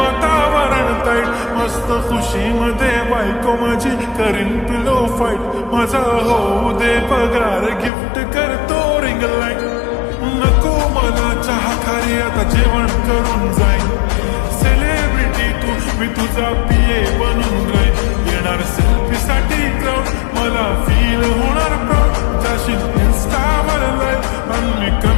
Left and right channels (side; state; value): right; drops out; at 7.9 s